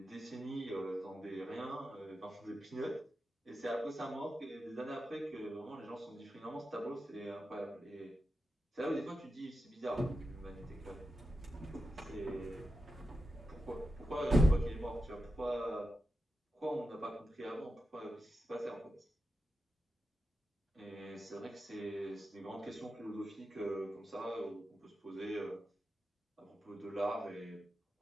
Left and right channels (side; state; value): both; normal; correlation 0.90